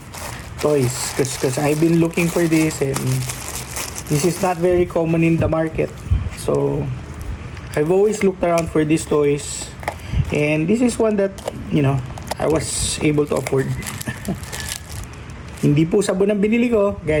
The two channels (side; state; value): both; identical; correlation 1.00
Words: toys. Because I've been looking for this, and this is not very common in the market. So, I've always looked around for these toys. And this is one that, you know, I was able to afford. Hindi po sabon ang binili ko,